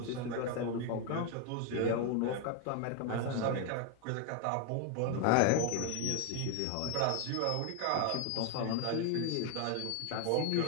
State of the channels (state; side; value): different; both; correlation 0.01